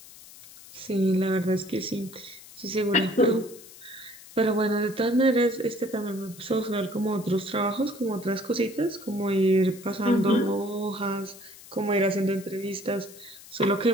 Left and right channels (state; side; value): noise; left; hiss, 19 dB below the sound